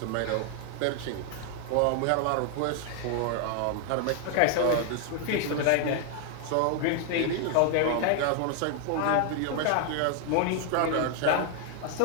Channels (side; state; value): both; different; correlation 0.00